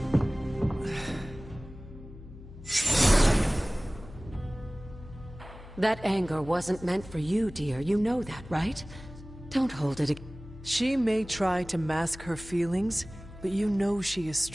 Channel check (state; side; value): noise; left; hum, 16 dB below the sound